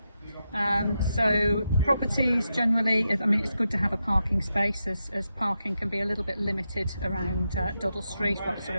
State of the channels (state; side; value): inverted; both; correlation -0.86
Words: So properties generally, I mean, it's good to have a parking space, as parking can be a little bit limited around Duddle Street, or sort